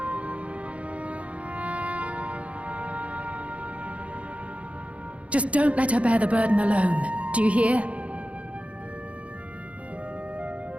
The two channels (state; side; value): late; left; 0.064 ms